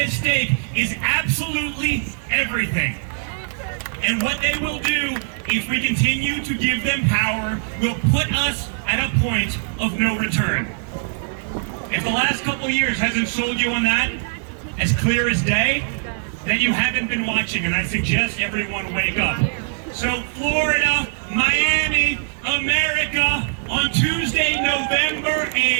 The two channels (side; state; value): left; silent; digital silence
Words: stake is absolutely everything. And what they will do, if we continue to give them power, will put us at a point of no return. If the last couple years hasn't sold you on that, as clear as day, then you haven't been watching, and I suggest everyone wake up. So Florida, Miami, America, on Tuesday, November